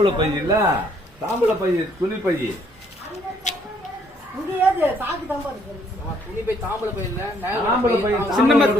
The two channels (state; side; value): normal; both; correlation 0.66